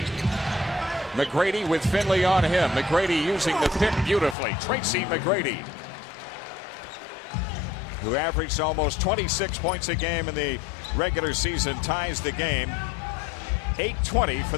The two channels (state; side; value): drops out; right; at 4.4 s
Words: McGrady with Finley on him. McGrady using the pick beautifully. Tracy McGrady, who averaged almost 26 points a game in the regular season, ties the game. 8:20 for